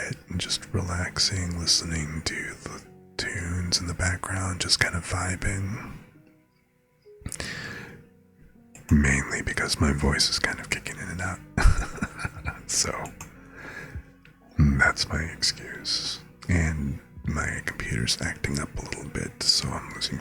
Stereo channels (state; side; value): identical; both; correlation 1.00